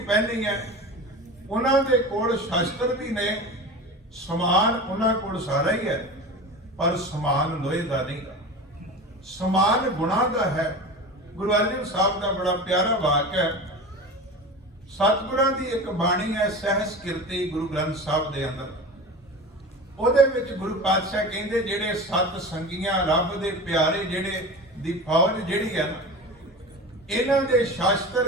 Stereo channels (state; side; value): normal; both; correlation 0.31